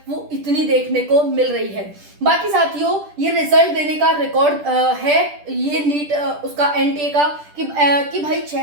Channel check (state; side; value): late; left; 10 ms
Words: वो इतनी देखने को मिल रही है। बाकी साथियों, ये रिजल्ट देने का रिकॉर्ड है ये नीट उसका एनटीए का कि भाई